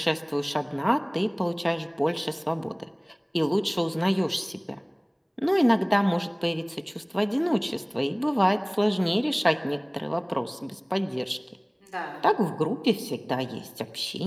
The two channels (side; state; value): both; identical; correlation 1.00